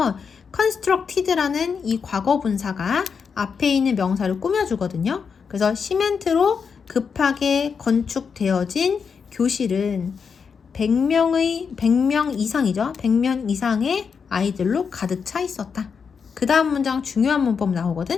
constructed라는 이 과거 분사가 앞에 있는 명사를 꾸며주거든요. 그래서 시멘트로 급하게 건축되어진 교실은 100명 이상이죠. 100명 이상의 아이들로 가득 차 있었다. 그 다음 문장 중요한 문법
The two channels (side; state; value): right; quieter; 6.0 dB